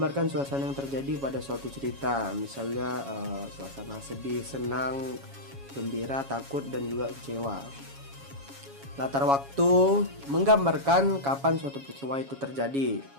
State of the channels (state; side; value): late; left; 7.2 ms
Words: suasana yang terjadi pada suatu cerita. Misalnya suasana sedih, senang, gembira, takut, dan juga kecewa. Latar waktu, menggambarkan kapan suatu peristiwa itu terjadi.